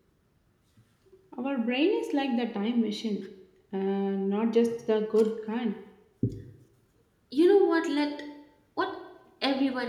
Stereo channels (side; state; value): both; identical; correlation 1.00